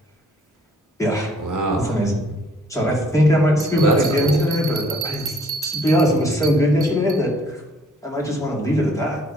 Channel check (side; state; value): both; normal; correlation 0.61